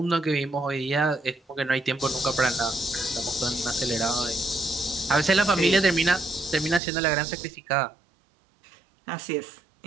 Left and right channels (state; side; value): drops out; left; at 6.8 s